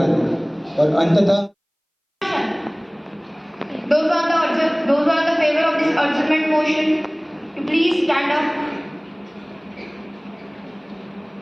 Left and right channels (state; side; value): identical; both; correlation 1.00